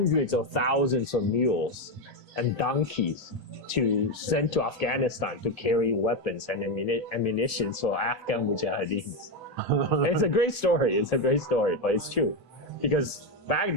of thousands of mules and donkeys to send to Afghanistan to carry weapons and ammunition for Afghan mujahideens. It's a great story. It's a great story, but it's true because back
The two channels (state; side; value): normal; both; correlation 0.09